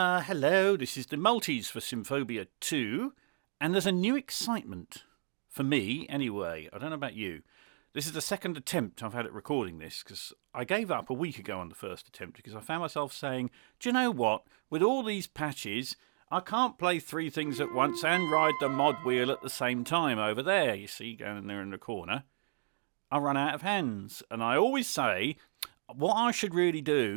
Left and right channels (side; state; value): left; silent; digital silence